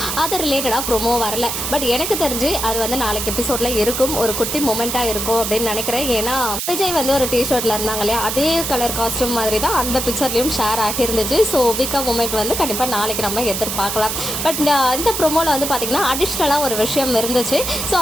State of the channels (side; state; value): right; noise; hiss, 3 dB below the sound